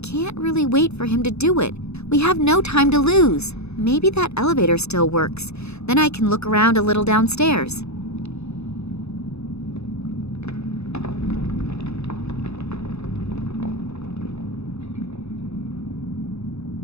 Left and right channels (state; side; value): late; right; 0.80 ms